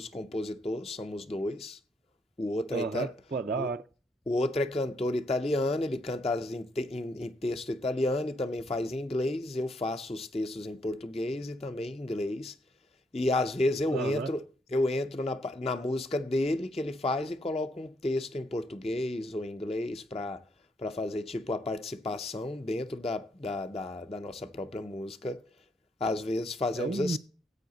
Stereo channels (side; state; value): both; normal; correlation 0.74